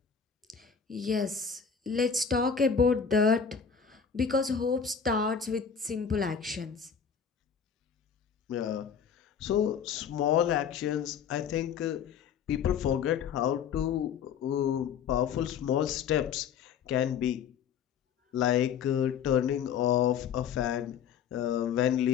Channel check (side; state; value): right; quieter; 7.1 dB